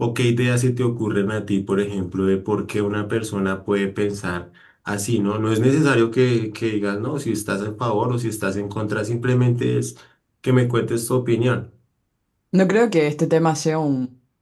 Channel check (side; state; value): both; identical; correlation 1.00